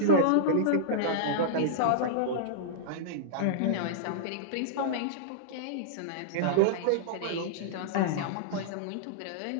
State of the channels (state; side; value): different; both; correlation -0.02